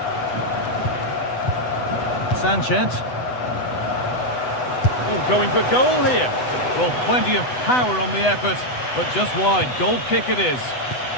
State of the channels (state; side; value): late; right; 8.0 ms